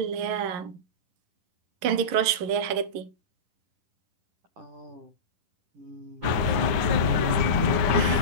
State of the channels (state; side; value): late; left; 10 ms